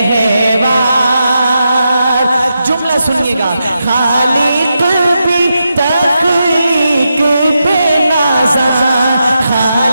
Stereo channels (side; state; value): both; inverted; correlation -0.86